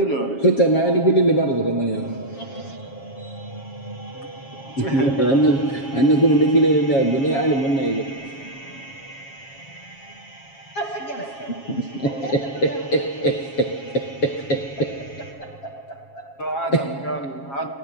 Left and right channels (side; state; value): right; late; 7.3 ms